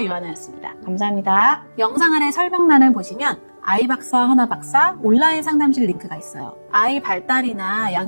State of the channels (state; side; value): inverted; both; correlation -1.00